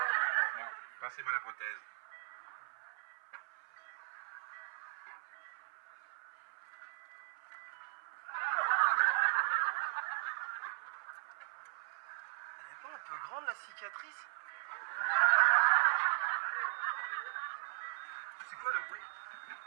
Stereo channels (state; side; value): silent; left; 52 dB below the other